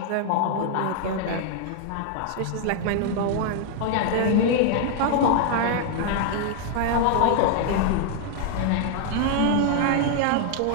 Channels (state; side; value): different; both; correlation 0.00